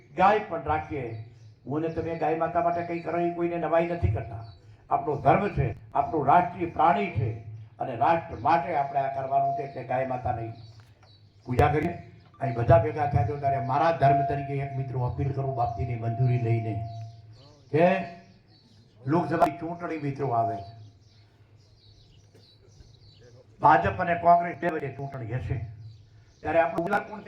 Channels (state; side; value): identical; both; correlation 1.00